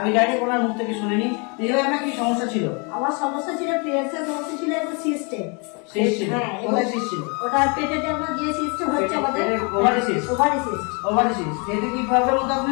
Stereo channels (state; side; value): quieter; right; 33.1 dB